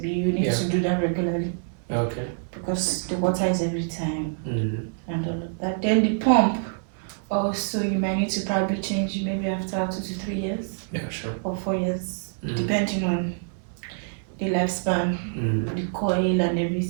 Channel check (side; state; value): left; silent; digital silence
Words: you need to do that regularly. Okay. Because the water is every time and all of that. Then the pump, also you might need to probably change maybe after 2 to 3 years. Yeah, sure. Or 4 years, depending on the lifespan, the coil and